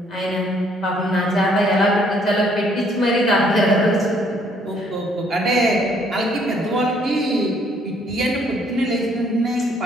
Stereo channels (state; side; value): normal; both; correlation 0.65